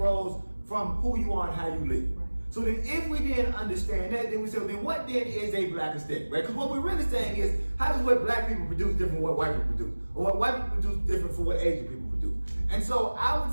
from who you are and how you live. So then if we then understand that, then we say, well, then what then is a Black aesthetic, right? Because what we're really saying is, how does what Black people produce different from what white people produce? Or what white people produce different from what Asian people produce? And so I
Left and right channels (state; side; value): inverted; both; correlation -1.00